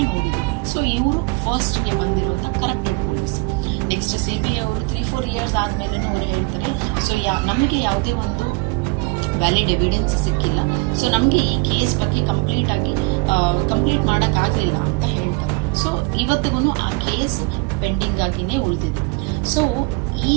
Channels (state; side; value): quieter; left; 27.9 dB